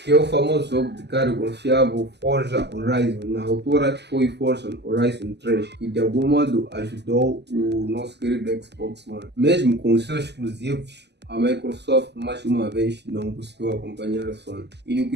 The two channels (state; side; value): late; left; 0.50 ms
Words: que é o famoso jogo de carga confiável Forza Horizon. Na altura foi Forza Horizon 3, que de algum modo ajudou o nosso querido Xbox One. Mesmo com os seus exclusivos, a Microsoft mais uma vez não conseguiu acompanhar a Sony. E no